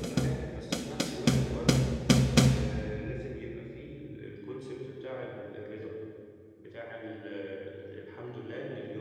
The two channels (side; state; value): both; identical; correlation 1.00